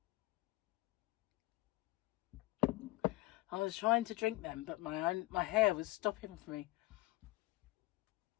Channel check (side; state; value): right; quieter; 19.3 dB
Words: I was trying to drink them, but my hair was stopping for me.